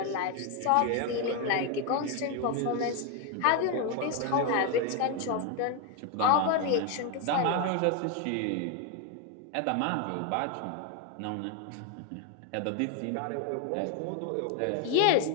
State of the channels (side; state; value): both; different; correlation 0.01